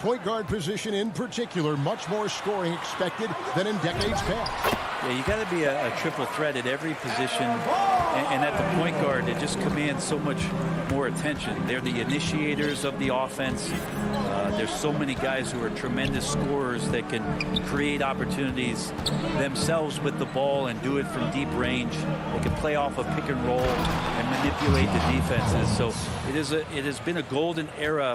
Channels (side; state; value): both; identical; correlation 1.00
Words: guard position in particular, much more scoring expected than in decades past. Yeah, you got to be a triple threat at every position, and at the point guard, it just commands so much more attention. They're the initiators of the offense. There's so many guys who are tremendous scorers that can create opportunities themselves with the ball and do it from deep range. They can play off a pick and roll and manipulate the defenses. So it has been a golden